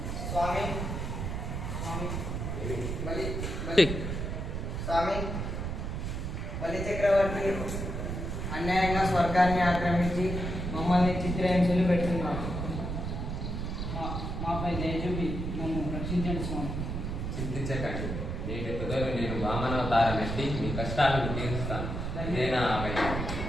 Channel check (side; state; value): right; noise; rumble, 3 dB below the sound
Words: స్వామి, బలి చక్రవర్తి అన్యాయంగా స్వర్గాన్ని ఆక్రమించి మమ్మల్ని చిత్రహింసలు పెడుతున్నాడు. మాపై దయ చూపి నన్ను రక్షించండి స్వామి. చింతించకండి. నేటి తుదలు నేను వామనావతారం ఎత్తి మీ కష్టాలను తీరుస్తాను. నేనా